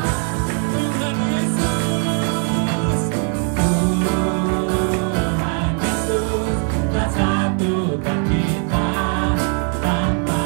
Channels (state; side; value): quieter; left; 38.7 dB